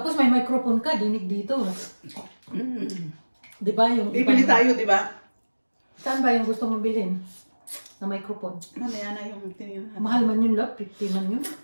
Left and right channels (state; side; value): inverted; both; correlation -1.00